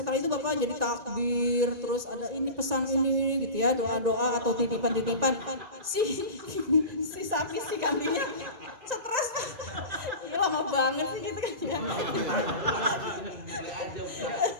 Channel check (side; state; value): left; late; 1.9 ms